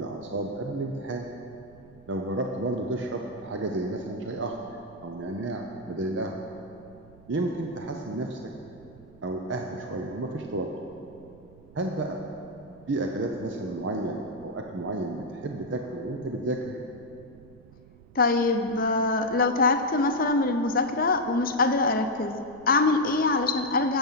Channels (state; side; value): noise; right; rumble, 22 dB below the sound